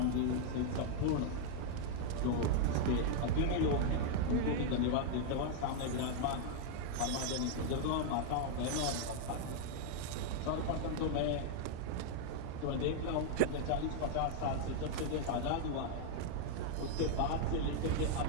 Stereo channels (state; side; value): different; both; correlation 0.00